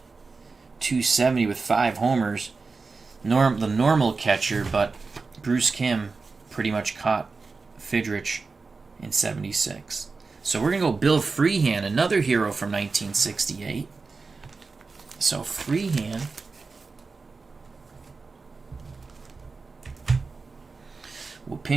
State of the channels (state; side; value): quieter; left; 4.2 dB